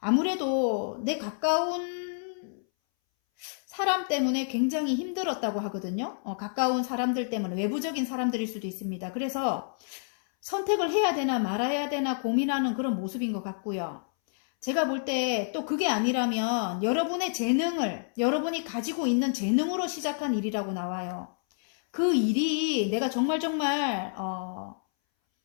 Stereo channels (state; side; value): silent; right; 59 dB below the other